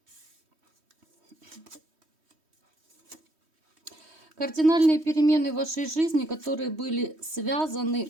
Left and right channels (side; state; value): left; late; 3.1 ms